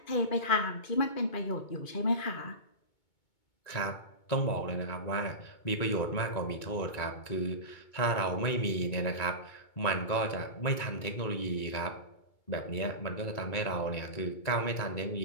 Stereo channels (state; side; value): late; right; 2.2 ms